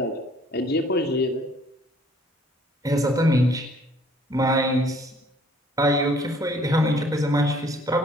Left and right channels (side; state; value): both; normal; correlation 0.59